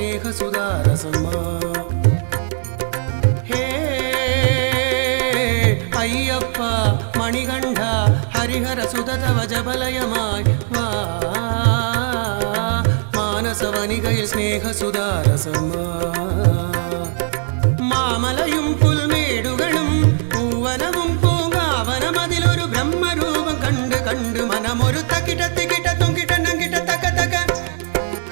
ഹേ അയ്യപ്പ മണികണ്ഠ ഹരിഹരസുത തവ ജപലയമായി വാ മാനസവനികയിൽ സ്നേഹസുധാരസമാ മാമലയും പുൽമേടുകളും പൂവനവും പൂങ്കാവനമതിലൊരു ബ്രഹ്മരൂപം കണ്ട് കണ്ട് മനമൊരു തക്കിട്ട തിക്കിട്ട തൊങ്കിട്ട നങ്കിട്ട തക്ക തക്ക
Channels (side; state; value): left; silent; digital silence